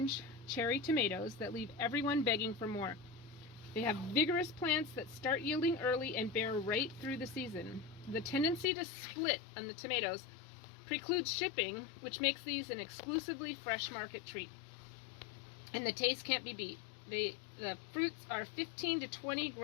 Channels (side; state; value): right; drops out; at 8.7 s